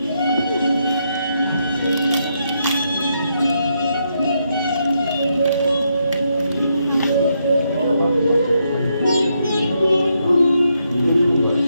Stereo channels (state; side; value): inverted; both; correlation -0.79